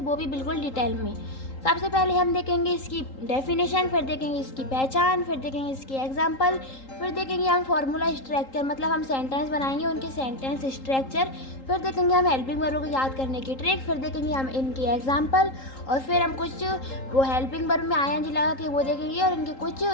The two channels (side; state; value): right; late; 3.8 ms